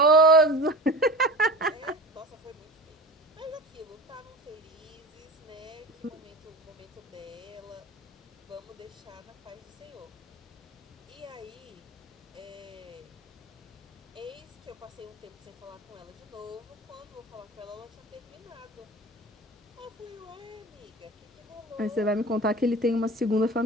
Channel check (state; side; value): normal; both; correlation 0.35